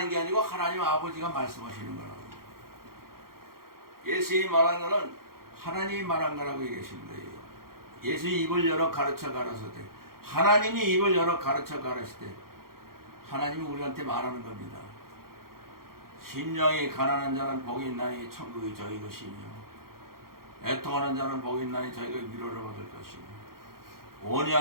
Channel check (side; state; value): left; late; 0.92 ms